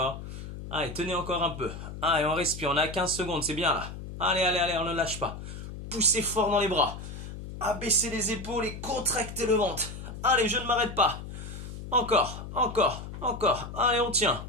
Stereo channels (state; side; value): noise; left; hum, 10 dB below the sound